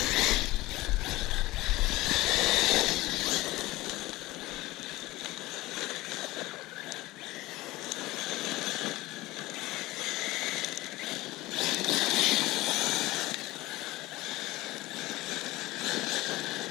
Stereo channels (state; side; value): quieter; right; 19.1 dB